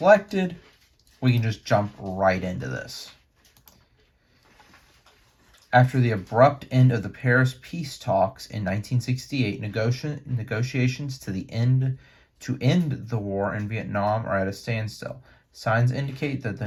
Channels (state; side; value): identical; both; correlation 1.00